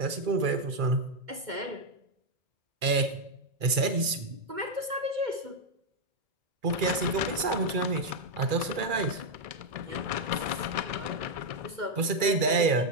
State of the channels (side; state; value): left; late; 2.3 ms